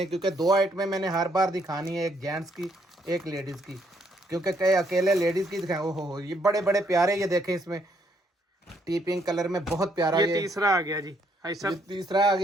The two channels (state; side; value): normal; both; correlation 0.71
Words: क्योंकि 2 आइटमें मैंने हर बार दिखानी है, एक जेंट्स की एक लेडीज़ की, क्योंकि कई अकेले लेडीज़ की दिखाएं। ओहो, ये बड़े बड़े प्यारे, ये देखें इसमें टी पिंक कलर में बहुत प्यारा। ये तीसरा आ गया जी भाई साहब, ये तीसरा आ